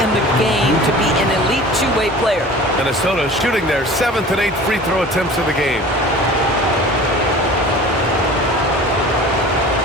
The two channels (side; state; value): both; normal; correlation 0.41